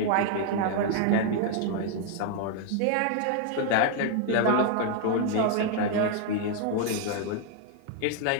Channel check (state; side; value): different; both; correlation 0.01